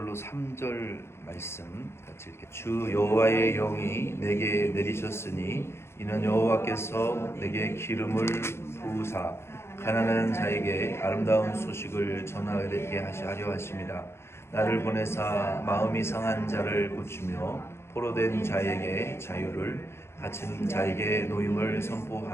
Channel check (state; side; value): late; right; 0.12 ms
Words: 3절 말씀 같이 읽게. 주 여호와의 영이 내게 내리셨으니 이는 여호와께서 내게 기름을 부으사 가난한 자에게 아름다운 소식을 전하게 하려 하심이라. 나를 보내사 마음이 상한 자를 고치며 포로된 자에게 자유를, 갇힌 자에게 노임을